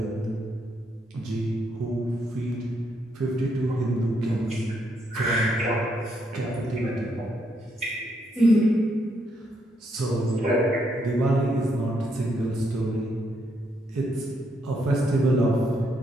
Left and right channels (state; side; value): normal; both; correlation 0.76